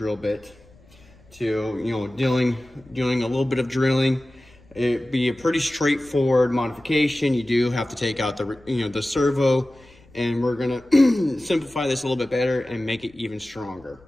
bit to, doing a little bit of drilling. It'd be a pretty straightforward modification. You do have to take out the servo, and we're gonna simplify this a little bit better and make it even stronger.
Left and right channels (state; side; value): noise; left; rumble, 27 dB below the sound